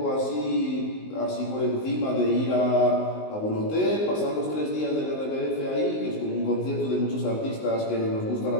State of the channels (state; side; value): late; right; 19 ms